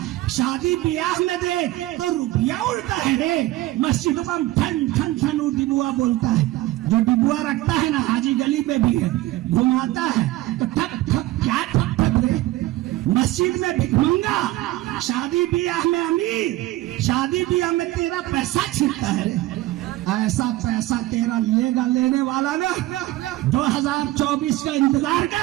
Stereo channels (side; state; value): left; quieter; 17.1 dB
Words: شادی بیاہ میں دیکھ تو روپیہ اڑتا ہے، مسجد میں ٹھن ٹھن ٹھن ڈبوا بولتا ہے، جو ڈبوا رکھتا ہے نا حاجی گلی میں بھی ہے، گھماتا ہے تو ٹھپ ٹھپ کیا ٹھپ ٹھپ رہے، مسجد میں بھک منگا، شادی بیاہ میں امیر، شادی بیاہ میں تیرا پیسہ چھینتا ہے۔ ایسا پیسہ تیرا لے گا لینے والا نا، 2024 کا انتظار